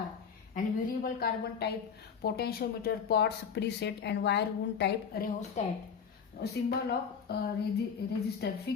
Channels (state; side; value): quieter; right; 6.7 dB